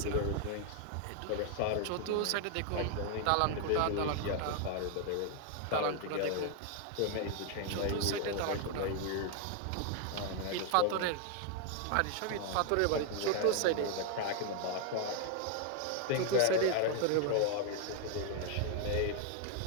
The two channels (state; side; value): different; both; correlation 0.00